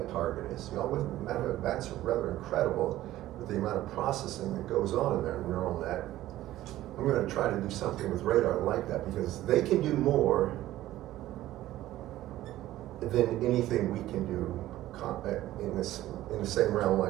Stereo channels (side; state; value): left; quieter; 14.8 dB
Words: target is. You know, matter of bats are rather incredible with the amount of processing that goes on in their neural net. I'm going to try to do something with radar like that, because they can do more than anything we can do in the same realm.